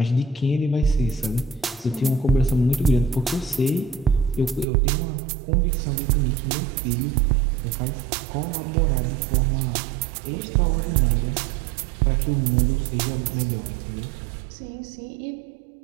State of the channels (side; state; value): left; drops out; at 4.7 s